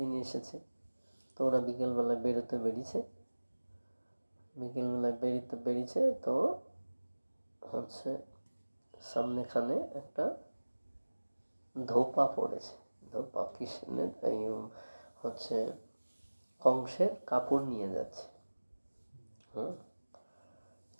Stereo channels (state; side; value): inverted; both; correlation -1.00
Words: এসেছে। তো ওরা বিকেলবেলায় বেরিয়েছে, তো হচ্ছে সামনেখানে একটা ধোপা পড়েছে, ধোপা কৃষ্ণের এই হচ্ছে কংসের কাপড় নিয়ে যাচ্ছে।